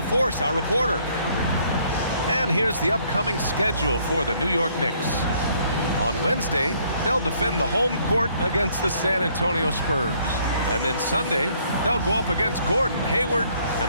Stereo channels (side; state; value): both; inverted; correlation -0.65